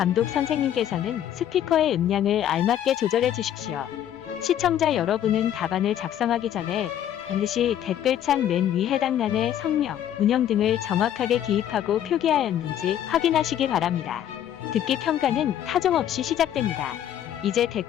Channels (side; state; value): right; quieter; 10.7 dB